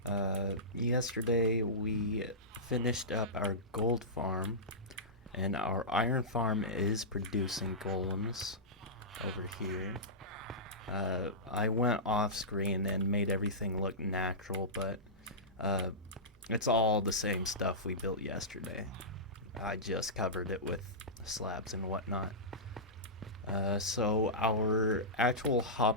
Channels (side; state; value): both; normal; correlation -0.16